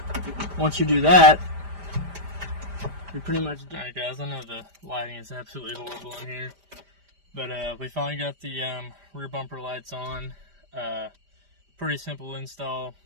once you do that, you're pretty much done. Alright guys, I know the lighting is absolutely horrible in here, but we finally got the rear bumper lights on. Pretty simple install,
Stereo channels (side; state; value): left; late; 5.0 ms